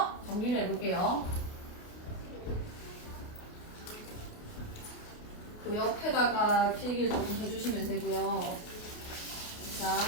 정리를 해볼게요. 그 옆에다가 필기를 조금 해주시면 되고요.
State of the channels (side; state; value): right; late; 28 ms